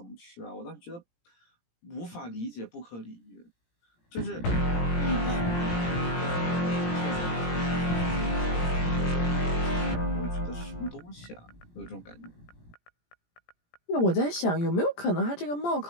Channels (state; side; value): late; right; 17 ms